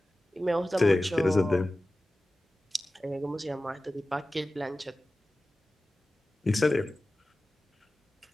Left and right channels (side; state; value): both; normal; correlation 0.96